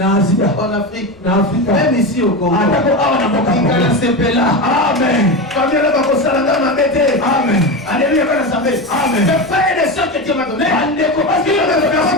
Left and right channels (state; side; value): noise; left; rumble, 29 dB below the sound